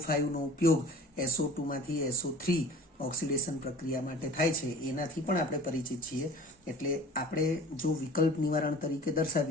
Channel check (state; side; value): normal; both; correlation 0.44